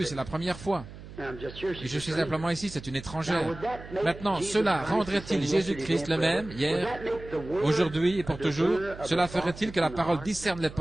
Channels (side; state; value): right; noise; hum, 15 dB below the sound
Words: c'est la première fois. Et je suis simplement ici, c'est une étrangère. Maintenant, cela rendrait-il Jésus-Christ le même, hier, aujourd'hui et pour toujours? Cela ferait-il que la parole discerne les